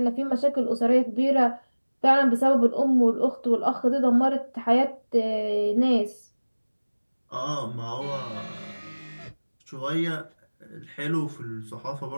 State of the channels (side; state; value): both; inverted; correlation -1.00